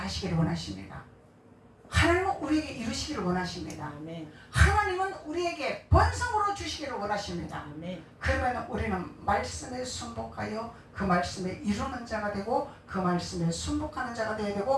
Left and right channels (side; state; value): both; identical; correlation 1.00